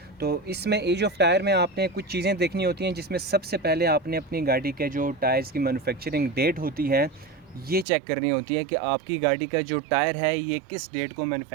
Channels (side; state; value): left; drops out; at 7.9 s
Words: तो इसमें एज ऑफ़ टायर में आपने कुछ चीज़ें देखनी होती हैं, जिसमें सबसे पहले आपने अपनी गाड़ी के जो टायर्स की मैन्युफैक्चरिंग डेट होती है ये चेक करनी होती है कि आपकी गाड़ी का जो टायर है ये किस डेट को